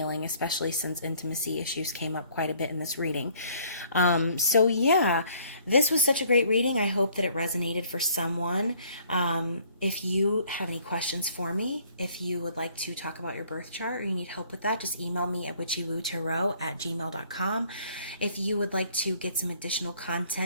especially since intimacy issues came up quite a bit in this reading. So yeah, this was such a great reading. I hope that it resonated for someone. If you have any questions for me, if you would like to talk about your birth chart or you need help with that, just email me at witchywootaro@gmail.com. If you would like to get some additional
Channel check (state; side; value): inverted; both; correlation -0.60